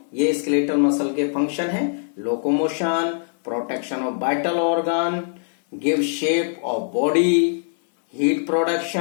ये स्केलेटल मसल के फंक्शन है। Locomotion, protection of vital organ, give shape of body, heat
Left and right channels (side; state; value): right; silent; 64 dB below the other